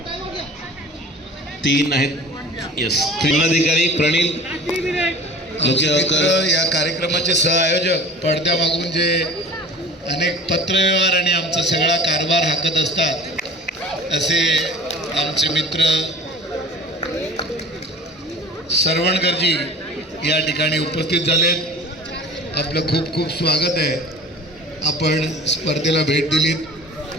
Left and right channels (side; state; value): both; normal; correlation 0.40